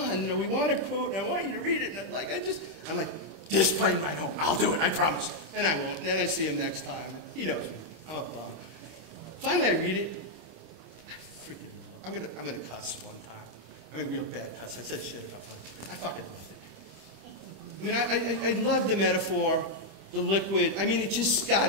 we want a quote, and I want you to read it, and I'm like, this plane ride home. I'll do it, I promise. And I won't. And then I see him next time. He knows me. I'm a bum. Finally, I read it. I freaking love it. I'm gonna cuss one time. I mean, real bad cuss. I said shit a couple times. I fucking loved it. I mean, I love the metaphor, the liquid. I mean, it just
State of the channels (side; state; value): left; late; 25 ms